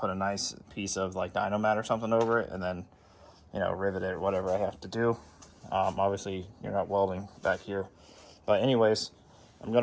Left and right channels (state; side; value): identical; both; correlation 1.00